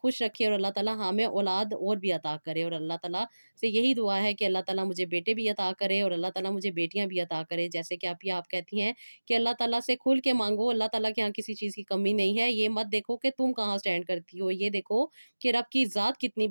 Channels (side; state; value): both; inverted; correlation -1.00